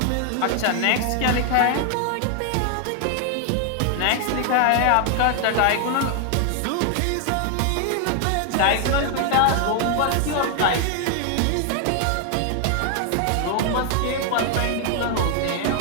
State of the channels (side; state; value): both; different; correlation 0.00